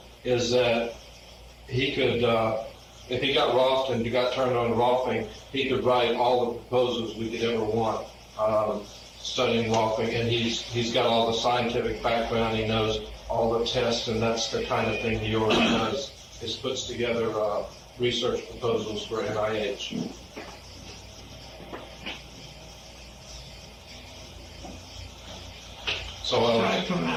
is that he could, if he got Rolfed and got turned on to Rolfing, he could write all the proposals we could ever want. studying Rolfing, and he's got all the scientific background. He knows all the tests, and that's the kind of thing he already does. Is puts together research proposals for NIH. So, Aside from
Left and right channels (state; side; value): identical; both; correlation 1.00